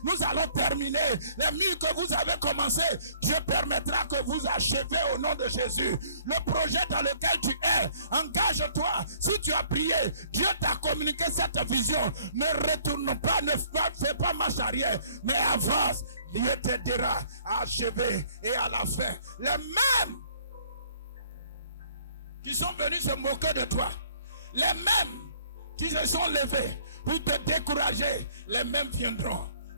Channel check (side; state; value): both; inverted; correlation -0.59